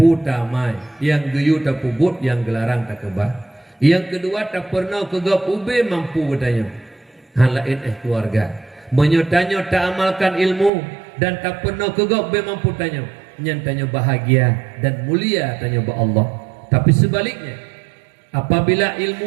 tamai yang geyu tak pubut yang gelarang tak kebah. Yang kedua tak pernah kegap ube mampu bertanya halain keluarga menyotanya tak amalkan ilmu dan tak pernah kegap ube mampu tanya nyantanya bahagia dan mulia tanya ba Allah. Tapi sebaliknya apabila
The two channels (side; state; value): left; drops out; at 10.7 s